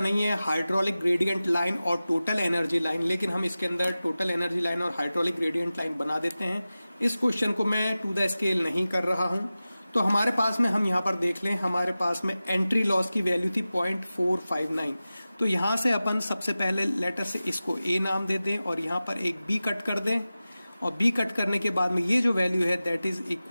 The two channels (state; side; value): inverted; both; correlation -0.96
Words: है हाइड्रोलिक ग्रेडियंट लाइन और टोटल एनर्जी लाइन, लेकिन हम इसके अंदर टोटल एनर्जी लाइन और हाइड्रोलिक ग्रेडियंट लाइन बना देते हैं। इस क्वेश्चन को मैं टू द स्केल नहीं कर रहा हूं। तो हमारे पास में हम यहां पर देख लें, हमारे पास में एंट्री लॉस की वैल्यू थी 0.459। तो यहां से अपन सबसे पहले लेटर से इसको A नाम दे दें और यहां पर एक B कट कर दें, और B कट करने के बाद में ये जो वैल्यू है that is